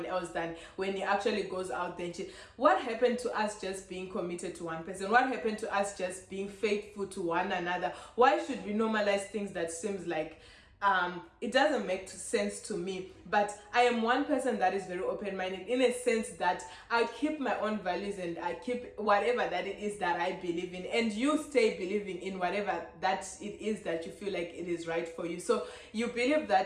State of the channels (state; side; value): identical; both; correlation 1.00